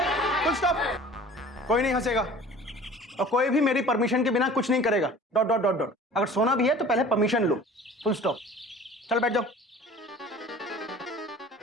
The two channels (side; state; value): both; normal; correlation 0.45